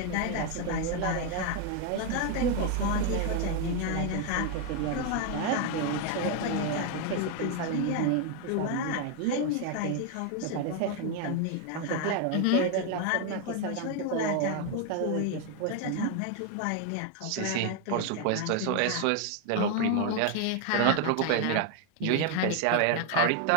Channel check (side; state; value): both; different; correlation 0.01